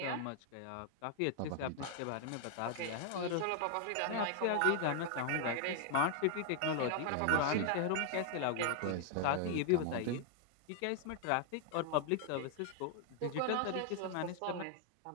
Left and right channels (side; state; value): both; different; correlation 0.00